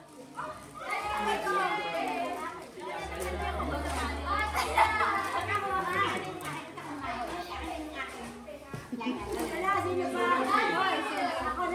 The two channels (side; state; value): both; identical; correlation 1.00